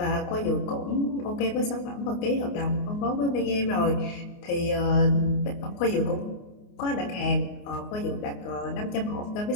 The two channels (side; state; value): right; late; 28 ms